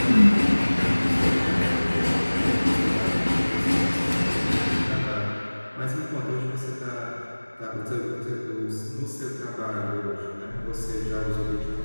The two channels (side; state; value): both; inverted; correlation -1.00